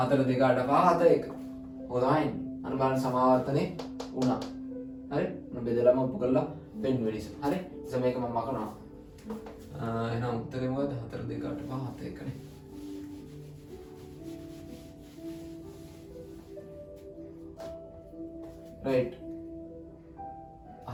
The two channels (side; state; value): both; identical; correlation 1.00